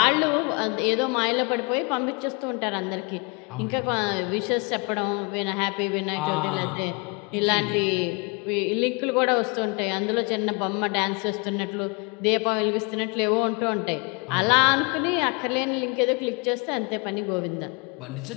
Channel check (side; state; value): right; quieter; 31.1 dB